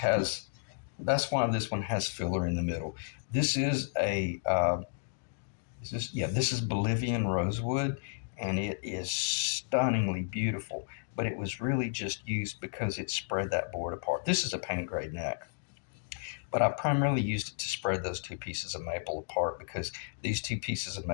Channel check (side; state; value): right; silent; digital silence